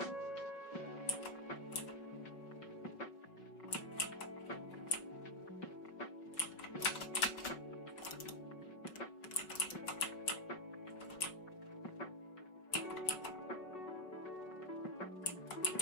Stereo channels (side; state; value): right; late; 5.3 ms